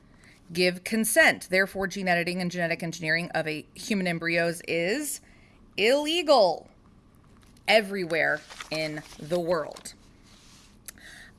give consent. Therefore, gene editing and genetic engineering of a human embryos is illegal everywhere in the world.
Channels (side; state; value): both; identical; correlation 1.00